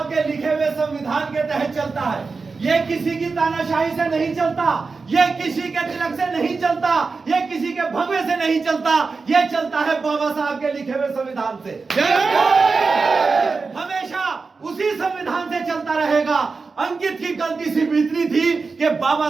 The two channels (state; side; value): quieter; left; 4.4 dB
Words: के लिखे हुए संविधान के तहत चलता है। ये किसी की तानाशाही से नहीं चलता, ये किसी के तिलक से नहीं चलता, ये किसी के भगवे से नहीं चलता, ये चलता है बाबा साहब के लिखे हुए संविधान से। हमेशा उसी संविधान से चलता रहेगा। अंकित की गलती सिर्फ इतनी थी कि बाबा